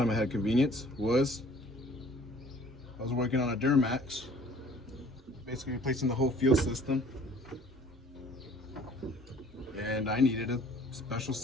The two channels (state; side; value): normal; both; correlation 0.53